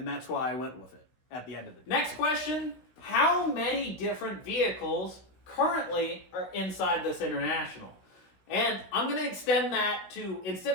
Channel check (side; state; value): right; late; 16 ms